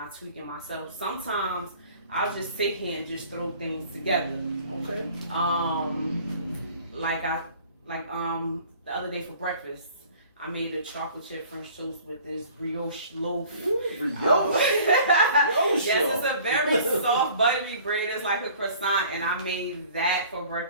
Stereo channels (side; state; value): both; inverted; correlation -0.49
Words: tweak it myself. Sometimes I'll just sit here and just throw things together. Okay. The other day for breakfast, I made a chocolate chip French toast with this brioche loaf. Brioche? Yes, it's a very soft, buttery bread. It's like a croissant, and I made that for